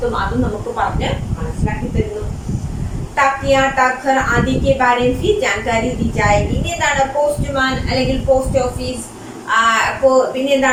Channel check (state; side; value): identical; both; correlation 1.00